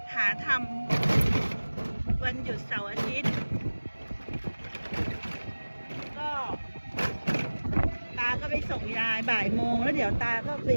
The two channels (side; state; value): both; inverted; correlation -1.00